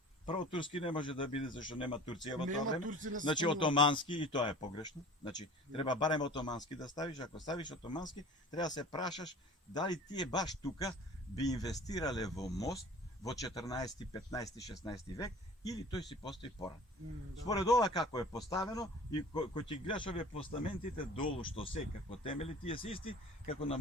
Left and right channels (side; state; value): both; normal; correlation 0.43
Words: Прво турски не може да биде зашто нема Турција во тоа Нема време. турци не се Значи спомнува. отомански и тоа е погрешно. Значи треба барем отомански да ставиш, ако ставиш отомански, треба да се прашаш дали тие баш тука би инвестирале во мост во 14, 15, 16 век или тој си постои порано. Да. Според ова како е поставено и кој ќе гледаш овие постаментите долу што се како темели, тие се исти како на